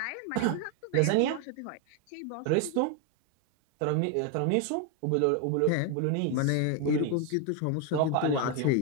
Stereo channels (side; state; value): both; different; correlation 0.01